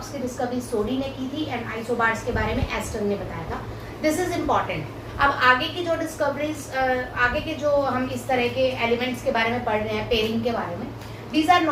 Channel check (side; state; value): both; identical; correlation 1.00